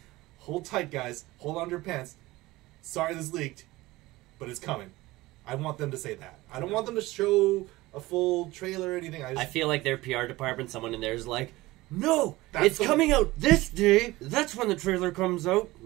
hold tight, guys, hold on to your pants. Sorry this leaked, but it's coming. I want them to say that. I don't want them to show a full trailer or anything. I feel like their PR department, someone in there is like, no, it's coming out this day. That's when the trailer comes out.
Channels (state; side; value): quieter; left; 19.3 dB